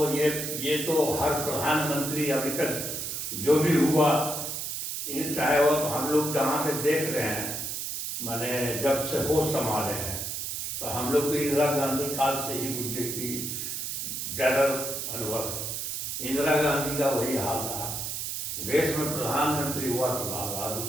ये तो हर प्रधानमंत्री अभी तक जो भी हुआ, चाहे वो तो हम लोग जहाँ से देख रहे हैं, माने जब से होश संभाले हैं, तो हम लोग तो इंदिरा गांधी काल से ही मुझे की ज़्यादा अनुभव। इंदिरा गांधी का वही हाल रहा। देश में प्रधानमंत्री हुआ तो लाल बहादुर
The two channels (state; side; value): noise; right; hiss, 4 dB below the sound